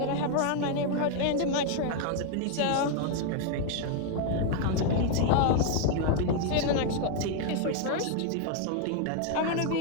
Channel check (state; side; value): different; both; correlation 0.00